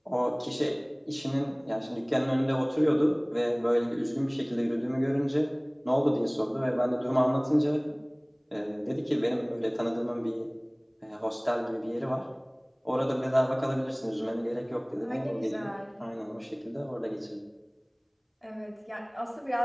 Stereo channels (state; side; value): identical; both; correlation 1.00